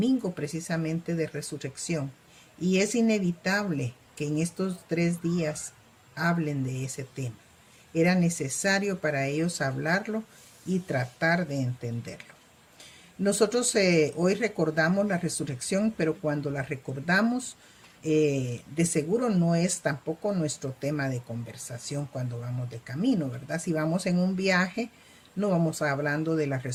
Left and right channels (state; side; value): identical; both; correlation 1.00